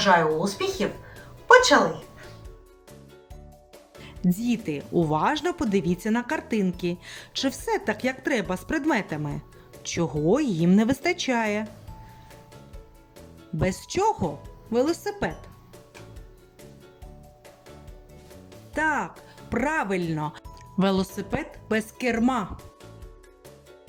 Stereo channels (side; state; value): both; identical; correlation 1.00